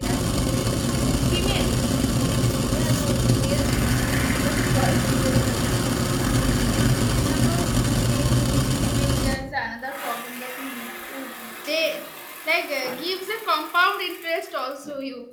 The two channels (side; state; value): both; identical; correlation 1.00